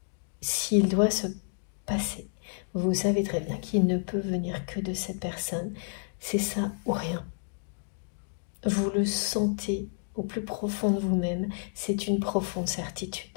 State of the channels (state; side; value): silent; right; digital silence